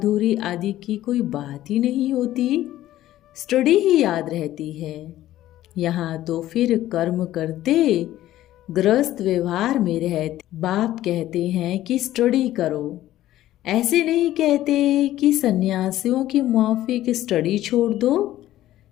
आदि की कोई बात ही नहीं होती, स्टडी ही याद रहती है। यहाँ तो फिर कर्म करते गृहस्थ व्यवहार में रहते बाप कहते हैं कि स्टडी करो। ऐसे नहीं कहते कि सन्यासियों की माफिक स्टडी छोड़ दो।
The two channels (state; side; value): quieter; right; 14.1 dB